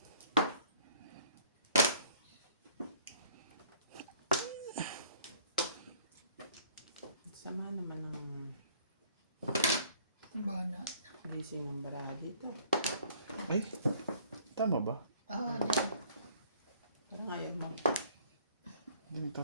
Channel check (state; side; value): inverted; both; correlation -0.56